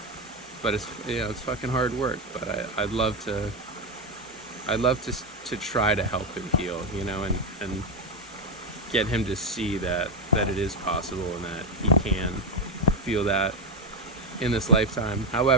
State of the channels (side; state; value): both; normal; correlation 0.09